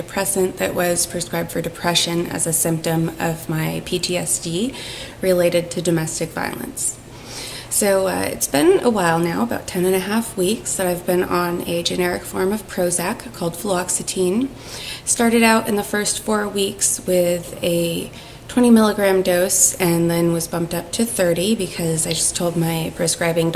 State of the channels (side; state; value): both; identical; correlation 1.00